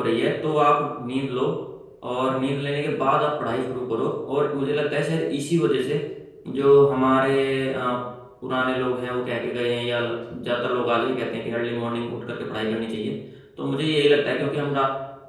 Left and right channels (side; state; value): both; identical; correlation 1.00